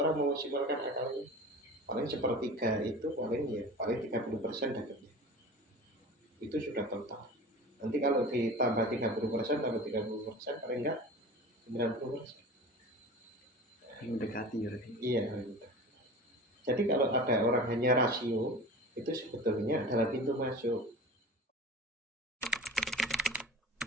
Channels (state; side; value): normal; both; correlation 0.36